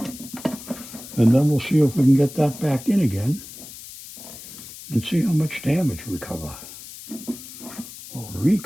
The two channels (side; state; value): left; noise; hiss, 14 dB below the sound